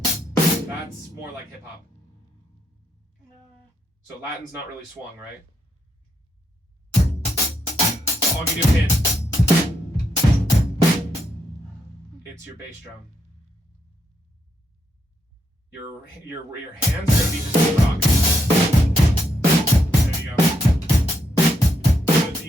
That's more like hip hop. So Latin's not really swung, right? So I'll give you a hint. It's your bass drum. Your hands are gonna be just the rock. There you go. So do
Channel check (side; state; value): both; normal; correlation 0.78